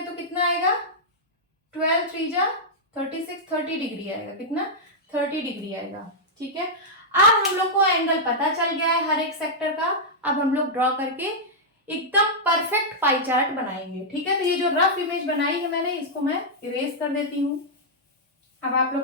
कितना आएगा 12 3 जा 36, 30 डिग्री आएगा। कितना 30 डिग्री आएगा। ठीक है, अब हम लोग को एंगल पता चल गया है हर एक सेक्टर का। अब हम लोग ड्रॉ करके एकदम परफेक्ट पाई चार्ट बनाएंगे। ठीक है, तो ये जो रफ इमेज बनाई है मैंने, इसको मैं इरेज कर देती हूँ। अब आप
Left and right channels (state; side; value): normal; both; correlation -0.07